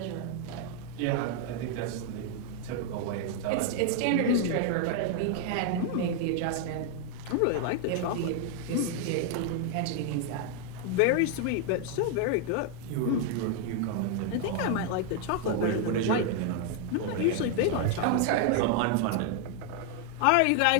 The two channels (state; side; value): different; both; correlation 0.00